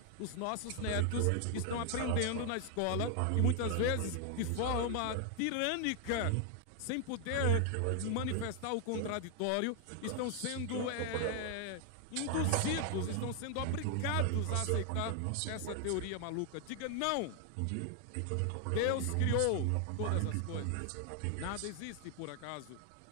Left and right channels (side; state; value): both; different; correlation 0.00